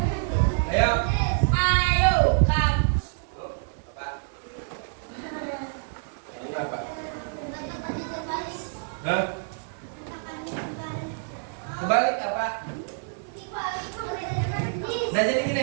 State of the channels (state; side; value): silent; left; 60 dB below the other